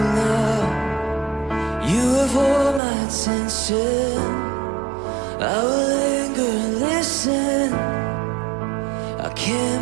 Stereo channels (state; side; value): drops out; left; at 2.8 s